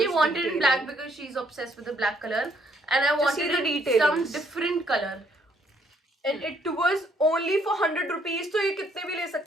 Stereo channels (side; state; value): both; normal; correlation 0.68